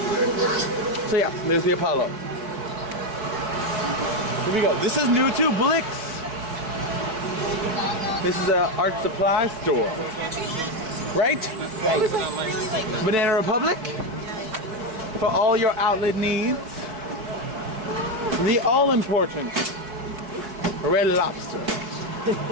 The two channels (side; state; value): left; late; 4.6 ms